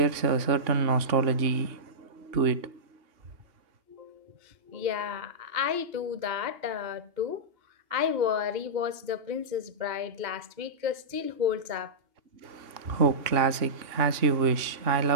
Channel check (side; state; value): left; late; 2.8 ms